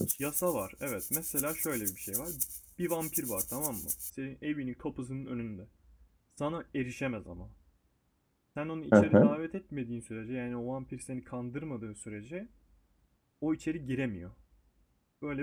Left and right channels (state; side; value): identical; both; correlation 1.00